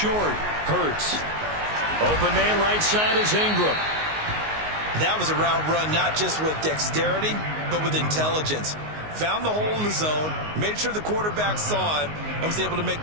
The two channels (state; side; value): late; left; 19 ms